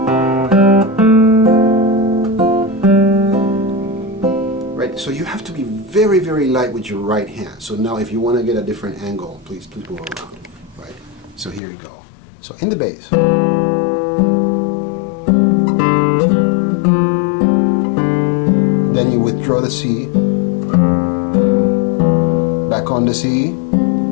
Right, so you have to be very, very light with your right hand. So now if you want to get a different angle, please move around. Right, so here you go. So in the bass. Then you withdraw the C, back on the C,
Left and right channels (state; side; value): drops out; right; at 11.6 s